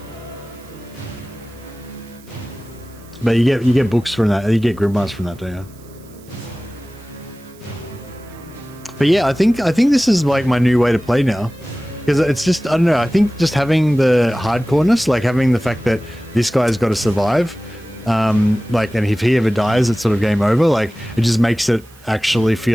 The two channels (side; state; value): right; noise; hiss, 27 dB below the sound